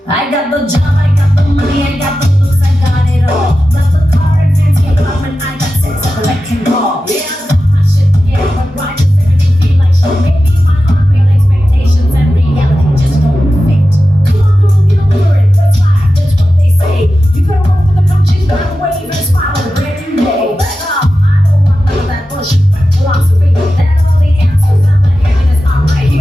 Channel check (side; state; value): both; normal; correlation 0.93